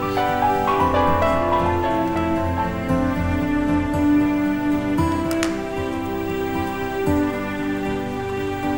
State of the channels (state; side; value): identical; both; correlation 1.00